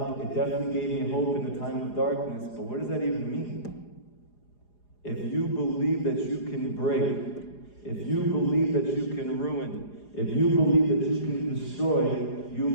It definitely gave me hope in the time of darkness. But what does that even mean? If you believe that you can break, if you believe that you can ruin, if you believe that you can destroy, you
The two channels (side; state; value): right; late; 4.9 ms